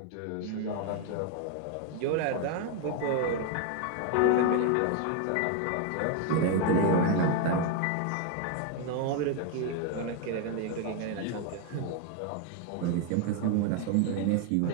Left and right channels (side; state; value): both; different; correlation 0.01